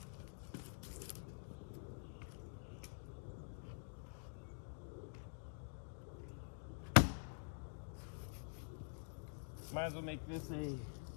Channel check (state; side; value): silent; right; digital silence